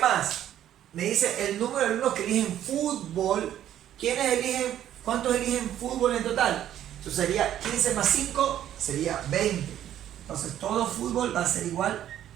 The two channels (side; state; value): left; quieter; 11.4 dB